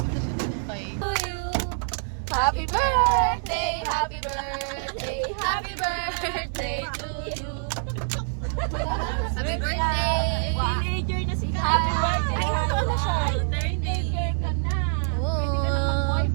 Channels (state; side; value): silent; left; digital silence